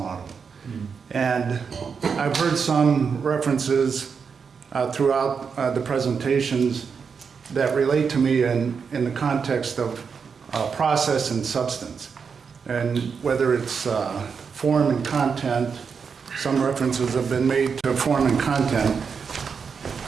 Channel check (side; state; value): left; quieter; 6.0 dB